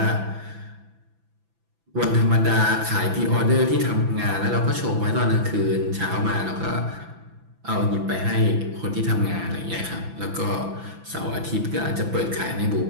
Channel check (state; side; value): late; left; 6.0 ms